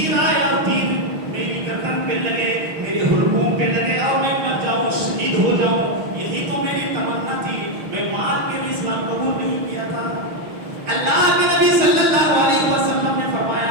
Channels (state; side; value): late; left; 6.3 ms